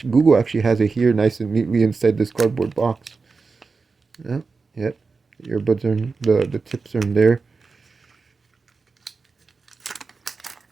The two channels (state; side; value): quieter; left; 4.4 dB